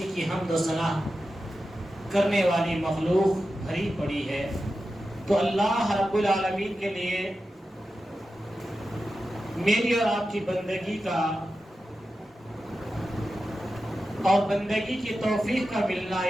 کی حمد و ثنا کرنے والی مخلوق بھری پڑی ہے. تو اللہ رب العالمین کے لیے میری اور آپ کی بندگی کا اور بندگی کی توفیق کا ملنا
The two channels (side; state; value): both; normal; correlation 0.92